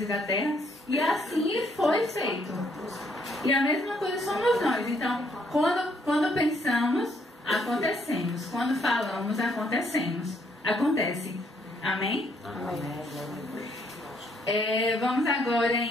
e da terra, e assim foi feito. E a mesma coisa somos nós. Então, quando pensamos, acontecemos. Quando falamos, acontece. Amém? Amém. Vamos agora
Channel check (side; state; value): both; normal; correlation 0.70